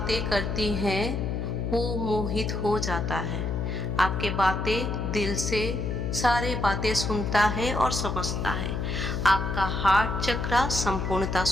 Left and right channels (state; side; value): noise; left; hum, 2 dB below the sound